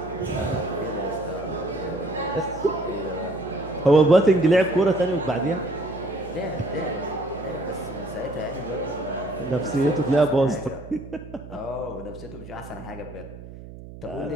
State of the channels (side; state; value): right; noise; hum, 15 dB below the sound